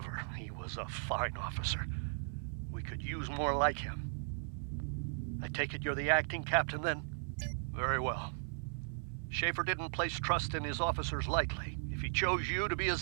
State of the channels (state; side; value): silent; left; digital silence